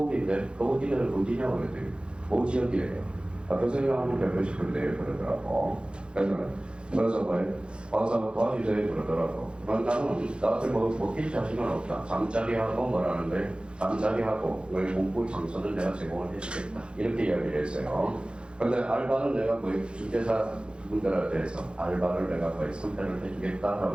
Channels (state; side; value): late; left; 0.054 ms